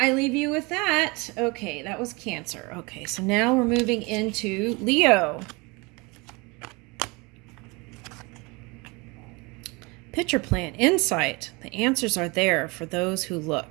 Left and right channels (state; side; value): quieter; left; 26.8 dB